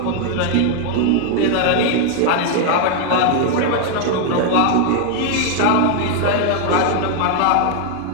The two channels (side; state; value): both; different; correlation 0.00